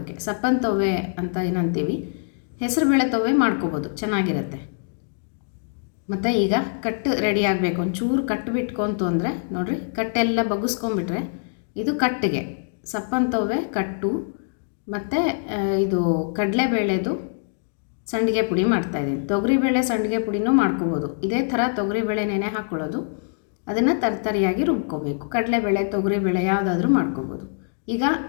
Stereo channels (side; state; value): right; silent; digital silence